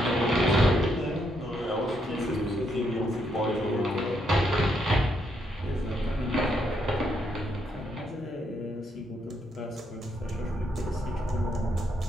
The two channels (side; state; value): both; normal; correlation 0.76